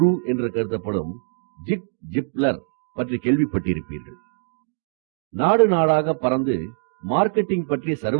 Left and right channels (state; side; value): silent; left; digital silence